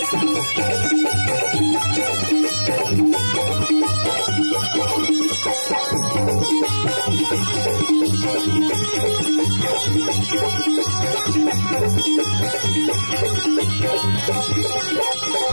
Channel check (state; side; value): inverted; both; correlation -1.00